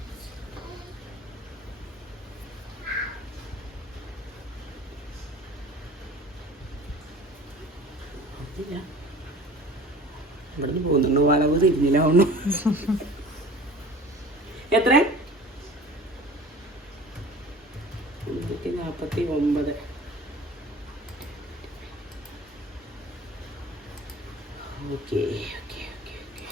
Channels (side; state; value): both; normal; correlation 0.43